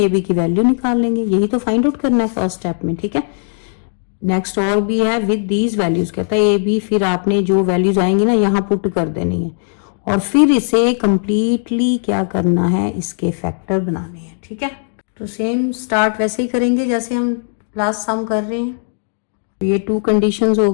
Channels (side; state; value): right; silent; digital silence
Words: b की वैल्यू निकाल लेंगे। यही तो फाइंड आउट करना है फर्स्ट स्टेप में, ठीक है। नेक्स्ट और भी है विद दीज वैल्यूज, कहता है a b, फिर आपने जो वैल्यूज आएंगी ना यहाँ पुट कर देनी है और फिर इसे कंप्लीटली क्या करना है, इसके फैक्टर बनाने हैं, ठीक है। तो सेम स्टार्ट वैसे ही करेंगे जैसे हम लास्ट सम कर रहे हैं। ये 2 कंडीशंस हो